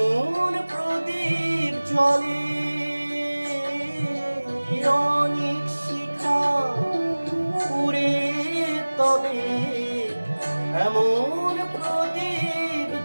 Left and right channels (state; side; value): inverted; both; correlation -1.00